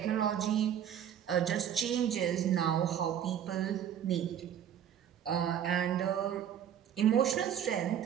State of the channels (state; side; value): quieter; left; 9.5 dB